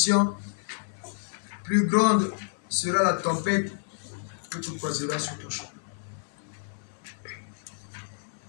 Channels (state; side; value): silent; right; digital silence